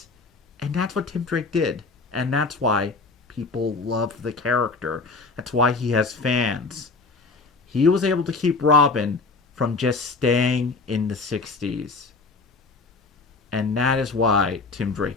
And that's what Tim Drake did. And that's why people love the character. That's why he has fans. He was able to keep Robin from just staying in the 60s. And that is why Tim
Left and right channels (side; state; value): right; quieter; 4.1 dB